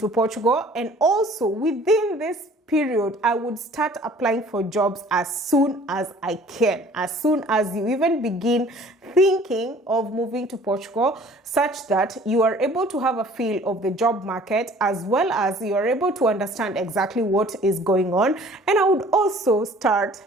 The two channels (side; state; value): both; normal; correlation 0.52